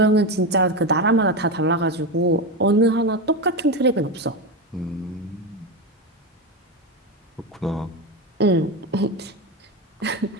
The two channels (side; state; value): both; normal; correlation 0.15